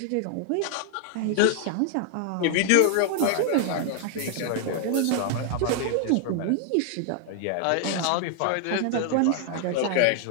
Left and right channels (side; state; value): both; different; correlation 0.00